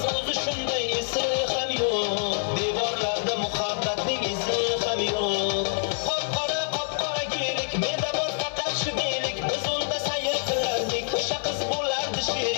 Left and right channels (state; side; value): silent; right; digital silence